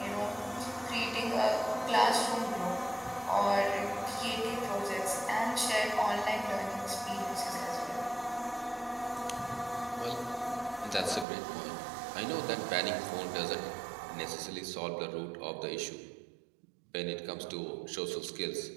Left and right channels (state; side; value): drops out; left; at 11.2 s